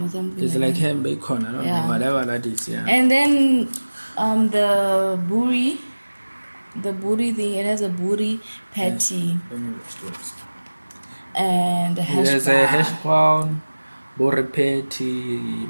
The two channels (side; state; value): both; inverted; correlation -1.00